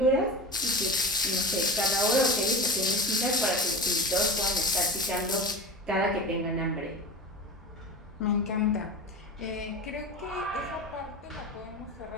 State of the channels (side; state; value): both; normal; correlation 0.31